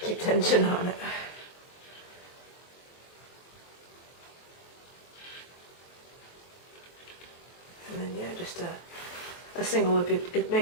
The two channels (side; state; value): right; late; 23 ms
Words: Keep tension on it. And then yeah, just a single loop. It